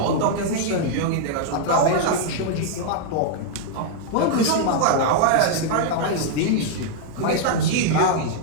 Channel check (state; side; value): different; both; correlation -0.01